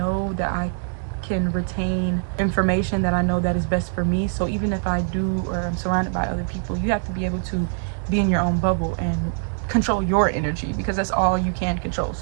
that I can retain information that I know that is best for me. So even if I do or I'm surrounded by other people, you have to be able to be in your own bubble and control your energy, because that's all you can control.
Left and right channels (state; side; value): silent; left; digital silence